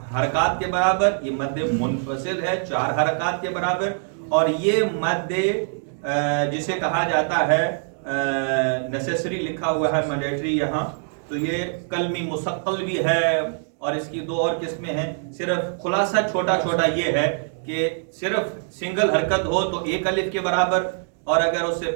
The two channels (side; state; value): left; silent; 61 dB below the other